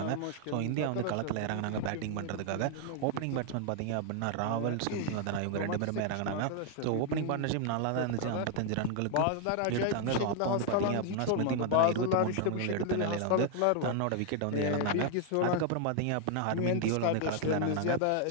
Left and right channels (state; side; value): different; both; correlation 0.00